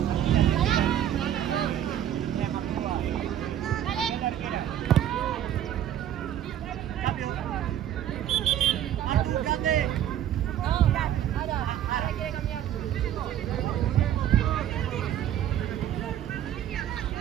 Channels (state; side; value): quieter; left; 11.0 dB